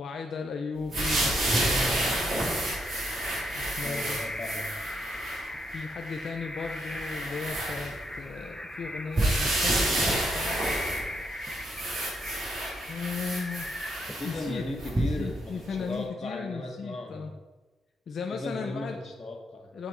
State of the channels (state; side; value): normal; both; correlation 0.78